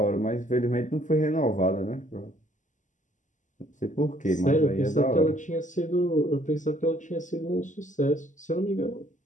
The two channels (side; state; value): right; late; 0.37 ms